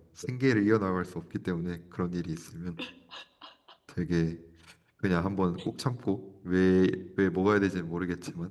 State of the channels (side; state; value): both; identical; correlation 1.00